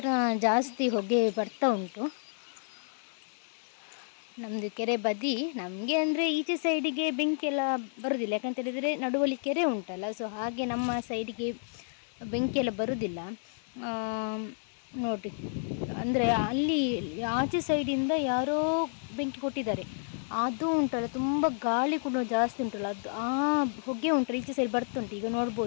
ಜಾಸ್ತಿ ಹೊಗೆ ಬರ್ತಾ ಉಂಟು ನಮ್ಮದು ಕೆರೆ ಬದಿ. ನಮಗೆ ಅಂದರೆ ಈಚೆ ಸೈಡಿಗೆ ಬೆಂಕಿ ಎಲ್ಲ ಬರೋದಿಲ್ಲ, ಯಾಕಂತ ಹೇಳಿದರೆ ನಡುವಲ್ಲಿ ಕೆರೆ ಉಂಟಲ್ಲ. ಸೊ ಹಾಗೆ ನಮ್ಮ ಸೈಡಿಗೆ ಬೆಂಕಿ ಎಲ್ಲ ಬರೋದಿಲ್ಲ ನೋಡಿ. ಅಂದರೆ ಅಲ್ಲಿ ಆಚೆ ಸೈಡಿಂದ ಯಾರೋ ಬೆಂಕಿ ಕೊಟ್ಟಿದ್ದಾರೆ, ಅದು ಉಂಟಲ್ಲ ತುಂಬ ಗಾಳಿ ಕೂಡ ಜಾಸ್ತಿ ಉಂಟಲ್ಲ, ಅದು ಆ ಹೊಗೆ ಉಂಟಲ್ಲ ಈಚೆ ಸೈಡ್ ಬರ್ತುಂಟು. ಈಗ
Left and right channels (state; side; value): silent; right; digital silence